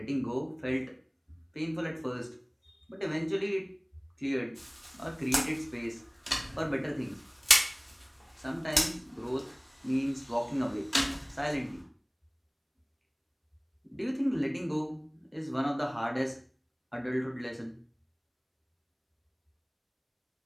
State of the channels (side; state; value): both; identical; correlation 1.00